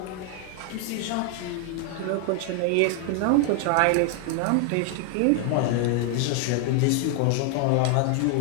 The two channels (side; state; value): both; different; correlation 0.00